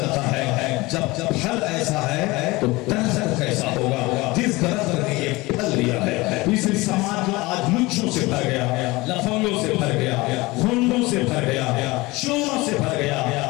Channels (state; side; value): quieter; right; 22.0 dB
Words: ہے جب پھل ایسا ہے تو درخت کیسا ہوگا، جس درخت نے یہ پھل دیا ہے۔ اس سماج جو آج لچوں سے بھر گیا، لفنگوں سے بھر گیا، گھنڈوں سے بھر گیا، چوروں سے بھر